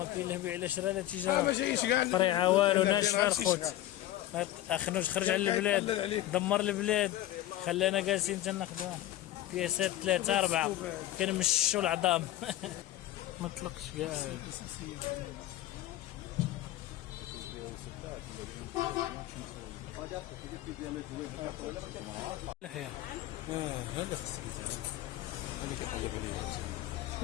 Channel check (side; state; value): right; quieter; 14.4 dB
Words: كاين له بيع لا شرا لا ما تجاره، جايش كاع طريعه والو، لا ناشفه شي الخوت. صغار. اخنوش خرج على يطلل البلاد، عليك. دمر البلاد، خلانا جالسين تناخذوا بياسات 3 4 كنمشوا العظام. ما طلقش كاع. لحيه هذا خصك هذا كيقلب عليه